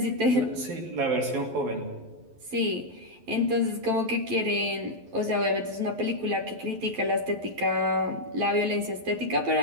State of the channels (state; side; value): late; left; 11 ms